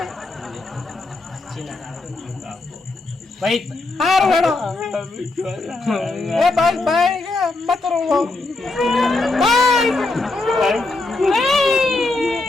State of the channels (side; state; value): right; quieter; 3.2 dB